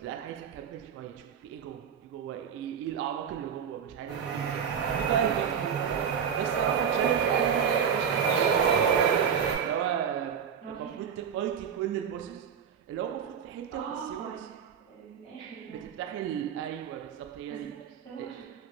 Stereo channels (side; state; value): left; quieter; 7.6 dB